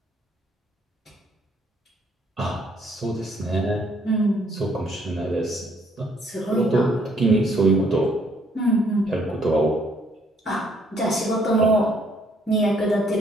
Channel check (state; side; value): normal; both; correlation 0.66